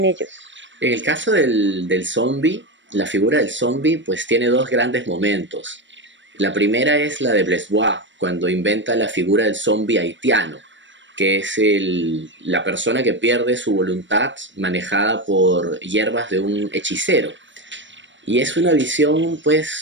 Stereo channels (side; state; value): left; late; 0.54 ms